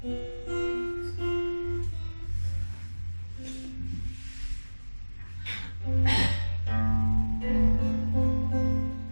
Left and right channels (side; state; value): both; inverted; correlation -1.00